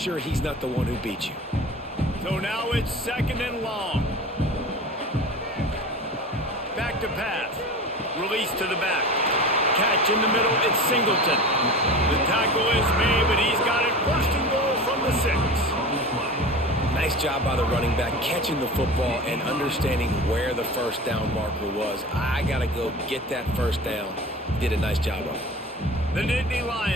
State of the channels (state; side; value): normal; both; correlation 0.34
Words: he's not the one who beat you. So now it's 2nd and long. Back to pass. Release to the back. Catch in the middle, it's Singleton. The tackle is made, but he's got it 1st and goal from the 6. Nice job by the running back catching the football and understanding where the first down marker was. I got to go get that first down. Did a nice job of it. The Nittany